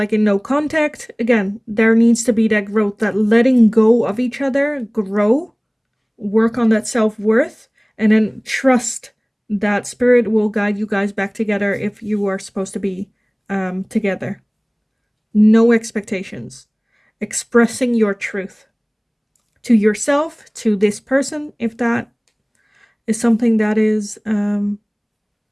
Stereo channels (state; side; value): identical; both; correlation 1.00